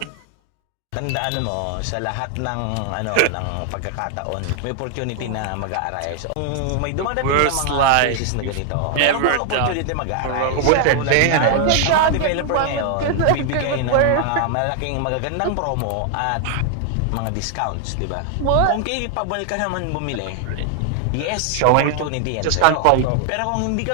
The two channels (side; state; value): both; different; correlation 0.00